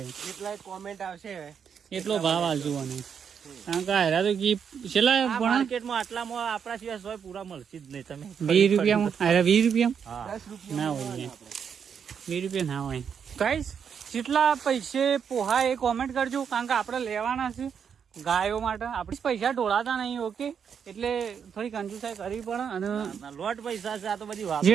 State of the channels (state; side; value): quieter; left; 7.3 dB